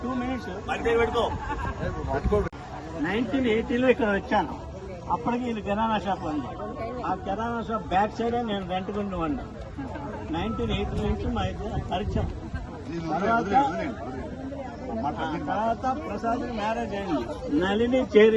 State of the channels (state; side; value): identical; both; correlation 1.00